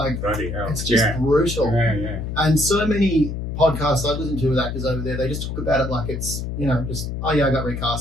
it's just brutal. Yeah. And so many podcasts I listen to with actors over there, they just talk about it like it's, you know, just, oh yeah, I got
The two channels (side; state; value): left; noise; hum, 5 dB below the sound